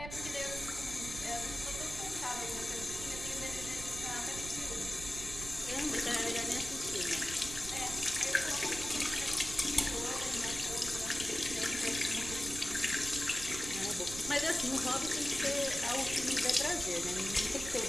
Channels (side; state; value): right; noise; rumble, 10 dB below the sound